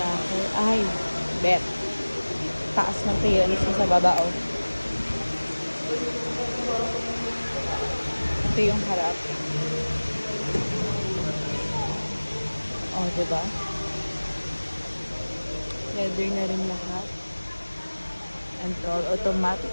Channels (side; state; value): both; inverted; correlation -1.00